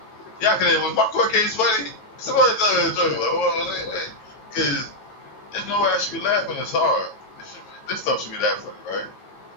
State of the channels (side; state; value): right; late; 9.1 ms